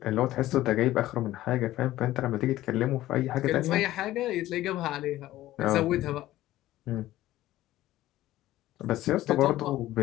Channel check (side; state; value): right; quieter; 15.2 dB